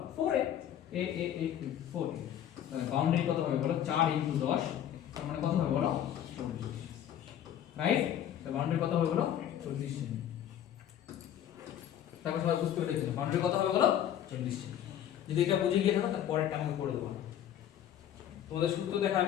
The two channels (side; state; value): right; quieter; 10.6 dB